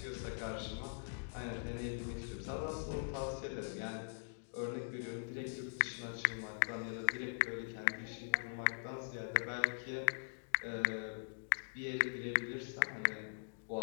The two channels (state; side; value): silent; right; digital silence